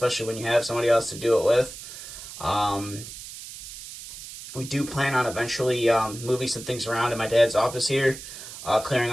when you have somebody else to do it with. We do plan on eventually moving some things around in my dad's office here, clearing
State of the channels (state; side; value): noise; right; hiss, 12 dB below the sound